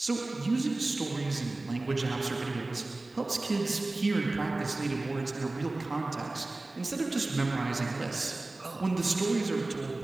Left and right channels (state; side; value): quieter; left; 3.0 dB